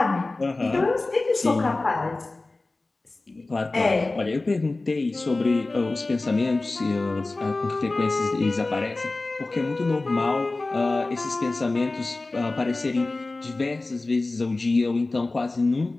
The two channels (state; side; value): quieter; right; 3.2 dB